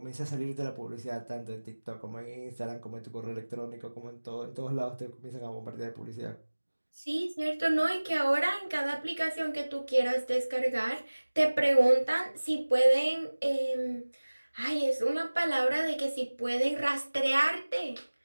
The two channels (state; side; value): inverted; both; correlation -1.00